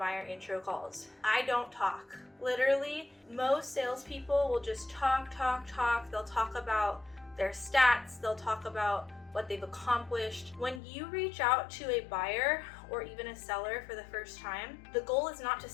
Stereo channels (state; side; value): drops out; right; at 10.8 s